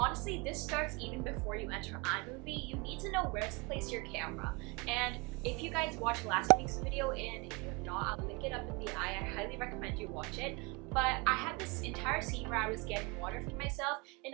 this starts even before you enter iMovie. You need to know where to place your camera. And if you guys watched last week's video, and if you have not, I'll link it up in the I highly recommend you watch it. But I had this entire scene where I was getting water for myself, and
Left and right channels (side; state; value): left; quieter; 28.3 dB